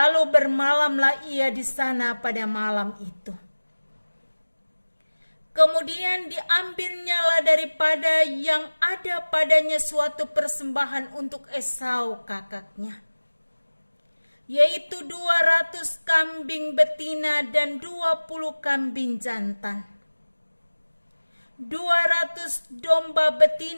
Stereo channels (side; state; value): both; inverted; correlation -1.00